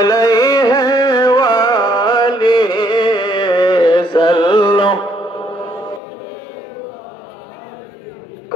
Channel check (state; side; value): drops out; right; at 6.0 s